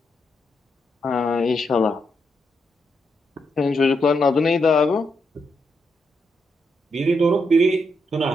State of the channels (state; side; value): normal; both; correlation 0.81